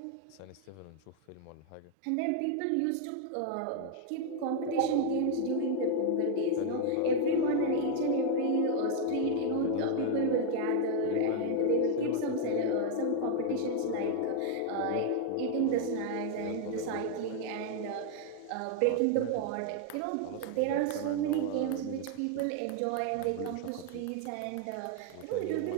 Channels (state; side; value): different; both; correlation 0.00